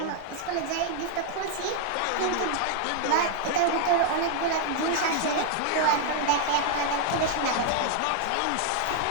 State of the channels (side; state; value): both; different; correlation 0.00